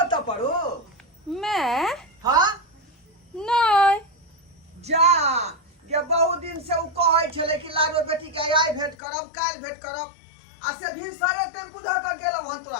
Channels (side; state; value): right; drops out; at 9.0 s